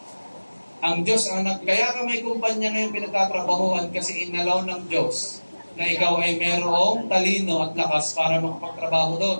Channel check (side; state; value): both; inverted; correlation -1.00